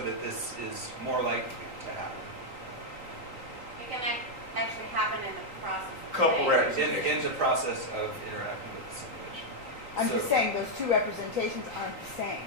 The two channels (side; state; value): left; late; 3.9 ms